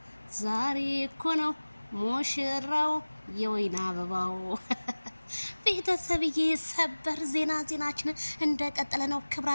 ዛሬ እኮ ነው ሙሽራው የወይን አበባው። ቤተሰብዬ ሰበር ዜናችን እንደቀጠለ ነው።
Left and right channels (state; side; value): inverted; both; correlation -1.00